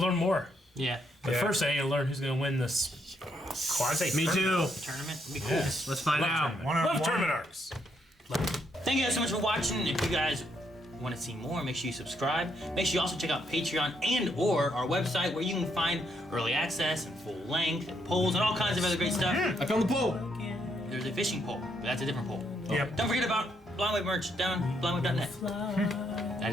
more. Yeah. But Yeah. first, I need to learn who's going to win this quasi. Me too. Tournament would be cool. Yes. Let's find out. Love tournament arcs. Thank you guys so much for watching. If you guys want to see more, make sure you subscribe. Make sure you also check out Patreon and/or our website where you can find early access and full length and polls and all kinds of other great stuff. I found the pole. There's a fishing pole, but that's a different pole. Yep. Don't forget about Blindwave merch down blindwave.net. That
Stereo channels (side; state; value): both; normal; correlation 0.75